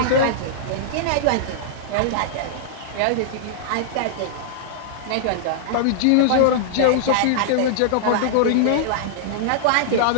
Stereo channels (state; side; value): different; both; correlation -0.01